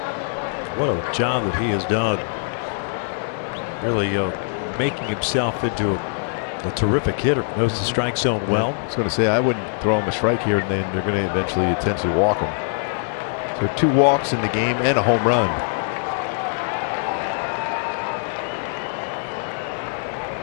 What a job that he has done. Really making himself into a terrific hitter. Knows the strike zone well. I was going to say, I wouldn't throw him a strike here, and then they're going to eventually potentially walk him. So 2 walks in the game and a home run.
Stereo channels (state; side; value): silent; right; 64 dB below the other